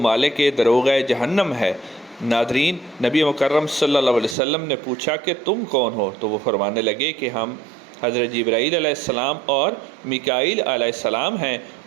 دروغہ جہنم ہے۔ ناظرین، نبی مکرم صلی اللہ علیہ وسلم نے پوچھا کہ تم کون ہو، تو وہ فرمانے لگے کہ ہم حضرت جبرائیل علیہ السلام اور میکائیل علیہ السلام ہیں،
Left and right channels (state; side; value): drops out; left; at 4.4 s